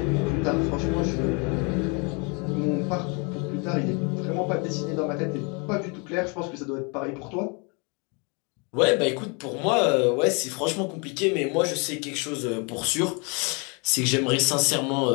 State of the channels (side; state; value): right; quieter; 32.4 dB